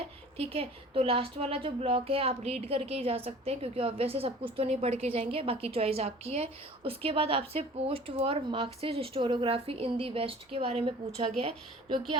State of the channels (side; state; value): both; normal; correlation 0.45